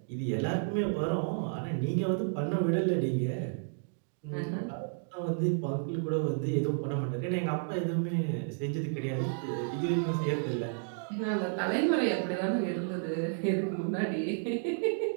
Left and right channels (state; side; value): silent; left; digital silence